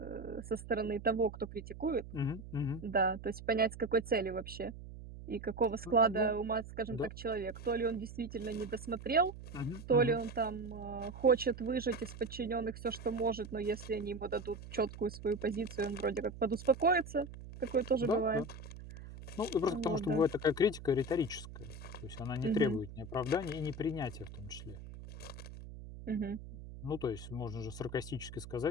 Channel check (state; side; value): noise; right; hum, 13 dB below the sound